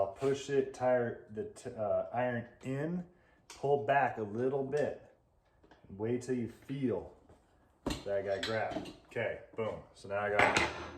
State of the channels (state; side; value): identical; both; correlation 1.00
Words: push the iron in, pull back a little bit, wait till you feel that guy grab. Okay, boom. So now I got